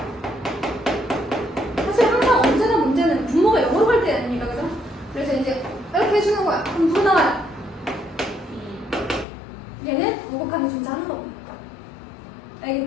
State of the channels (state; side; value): drops out; right; at 9.2 s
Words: 사실 항상 언제나 문제는 분모가 영어로 갈 때 아닙니까, 그죠? 그래서 이제 이렇게 해주는 거야. 그럼 누구 나와요? 얘는 우극한이 존재하는 겁니다.